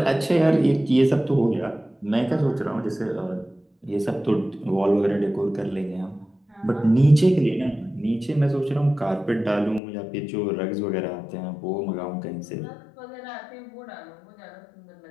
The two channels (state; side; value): drops out; right; at 9.8 s